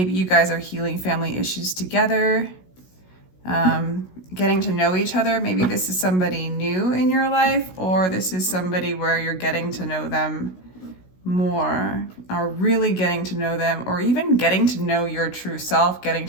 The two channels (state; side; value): late; right; 16 ms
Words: you guys are healing family issues together, getting to know each other. Maybe this is somebody new in your life, or this is somebody where you're getting to know them more, or really getting to know them, or even getting to know your true self, getting